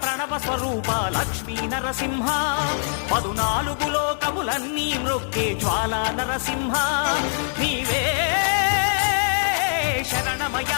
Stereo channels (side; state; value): right; silent; digital silence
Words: ప్రణవ స్వరూప లక్ష్మీ నరసింహ 14 లోకములన్నీ మ్రొక్కే జ్వాలా నరసింహ నీవే